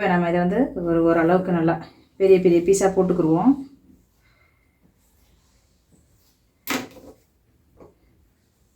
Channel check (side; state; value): both; identical; correlation 1.00